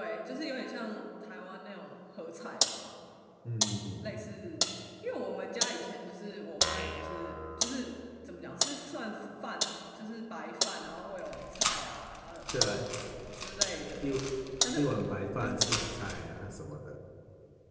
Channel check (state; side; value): identical; both; correlation 1.00